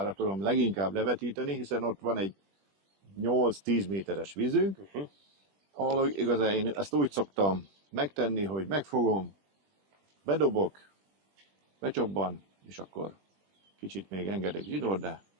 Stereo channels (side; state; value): left; late; 20 ms